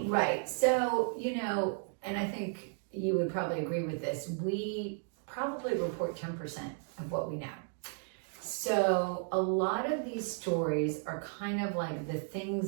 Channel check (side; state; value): left; silent; 55 dB below the other